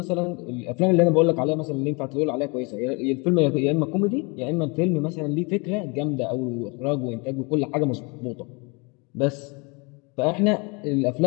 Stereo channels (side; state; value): right; quieter; 30.2 dB